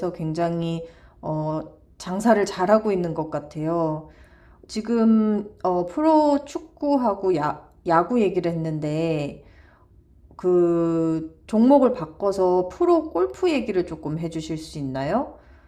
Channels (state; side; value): identical; both; correlation 1.00